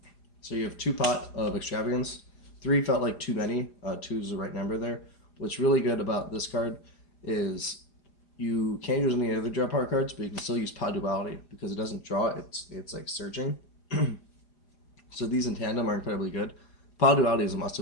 So you have 2 pot of Extravagance. 3 felt like too many. 2 is the right number there. What's really good about this card is you can't use any other draw power cards, but you can still use Pot Duality because it doesn't draw. It's like searching. So these in tandem are incredibly good. Pot Duality is a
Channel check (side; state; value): right; late; 5.0 ms